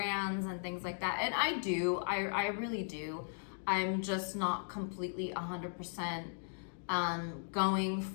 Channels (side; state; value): right; silent; digital silence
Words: and things like that? And I do, I really do. I'm just not completely 100% going